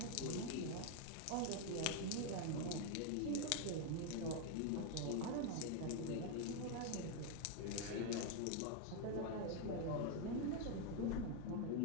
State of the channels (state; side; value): different; both; correlation 0.01